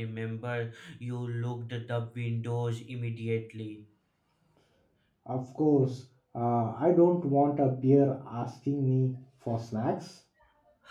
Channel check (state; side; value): identical; both; correlation 1.00